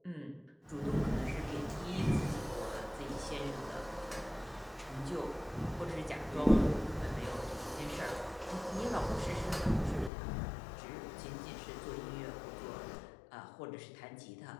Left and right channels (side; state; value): right; drops out; at 10.1 s